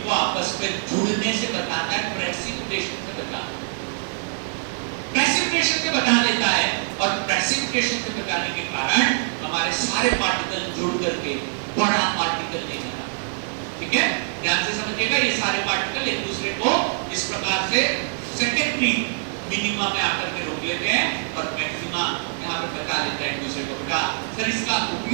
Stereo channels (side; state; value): left; silent; digital silence